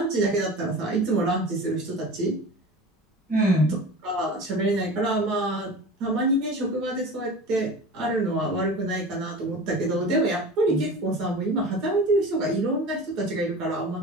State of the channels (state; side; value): normal; both; correlation 0.35